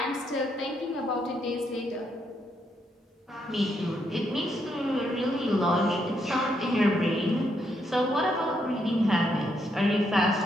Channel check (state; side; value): normal; both; correlation 0.77